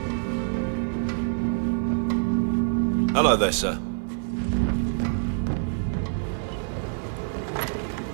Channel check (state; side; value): silent; left; 61 dB below the other